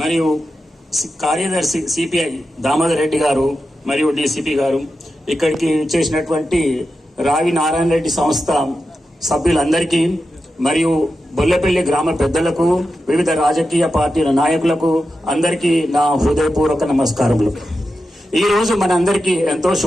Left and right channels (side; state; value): both; normal; correlation 0.90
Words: మరియు కార్యదర్శి సిపిఐ దామోదర్ రెడ్డి గారు, మరియు డిసిపి గారు, ఇక్కడికి చేసినటువంటి రావి నారాయణ రెడ్డి సంస్థ సభ్యులందరికీ, మరియు బొల్లపల్లి గ్రామ పెద్దలకు, వివిధ రాజకీయ పార్టీల నాయకులకు అందరికీ నా హృదయపూర్వక నమస్కారములు. ఈ రోజు మనందరికీ ఎంతో